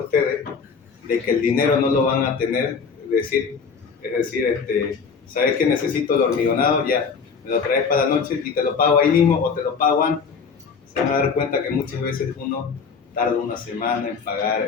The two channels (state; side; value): quieter; right; 5.6 dB